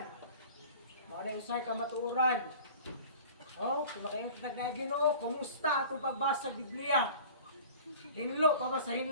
Mga na-usay ka matuuran. Oh, kung makaingon ta na Ginoo, kumusta atong pagbasa sa Biblia? Hinlo pa ba sa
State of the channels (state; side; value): inverted; both; correlation -0.42